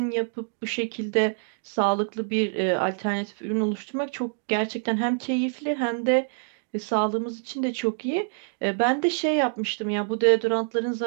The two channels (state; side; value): silent; left; digital silence